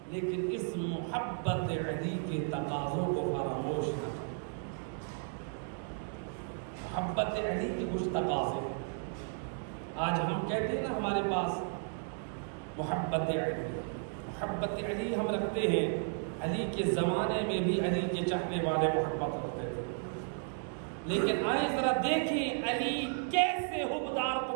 لیکن اس محبت علی کے تقاضوں کو فراموش نہ کریں۔ محبت علی کے کچھ تقاضے، آج ہم کہتے ہیں نا ہمارے پاس محبت علی، محبت علی ہم رکھتے ہیں۔ علی کے زمانے میں بھی علی کے چاہنے والے محبت رکھتے تھے، لیکن آئیں ذرا دیکھیں علی کیسے حبدار کو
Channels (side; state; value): left; silent; 55 dB below the other